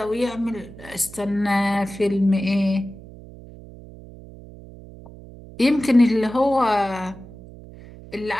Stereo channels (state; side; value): noise; right; hum, 18 dB below the sound